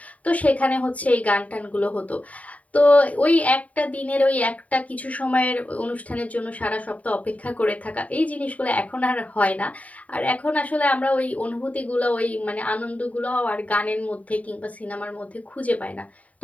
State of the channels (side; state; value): right; late; 0.069 ms